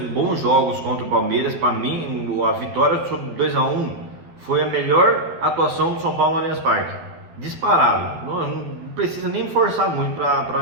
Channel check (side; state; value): left; late; 12 ms